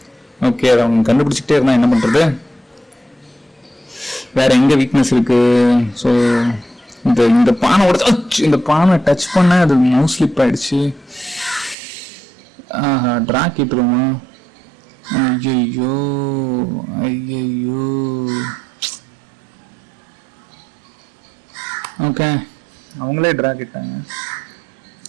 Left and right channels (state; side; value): drops out; left; at 11.8 s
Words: ஓகே, அதை அவங்க கண்டுபிடிச்சிட்டே இருந்தா என்ன பண்றது? வேற எங்க வீக்னஸ் இருக்கு? ஸோ இந்த பானை உடச்சு, இந்த பானை டச் பண்ண அது மவுஸ் ஸ்லிப் ஆயிடுச்சு. டிரா கிட்டுருமா? ஐயோ ஐயோ. ஓகே, அவங்களே டிரா கிட்டாங்க.